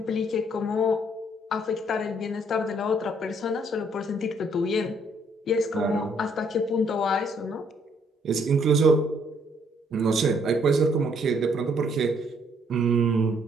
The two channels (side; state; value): both; normal; correlation 0.67